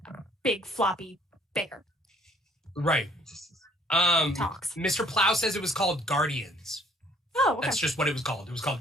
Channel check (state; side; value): normal; both; correlation 0.61